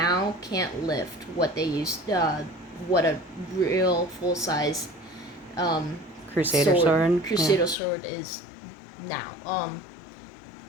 can't lift what they used, what a real full-size Crusader sword? Crusader sword is now.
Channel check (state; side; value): drops out; right; at 7.8 s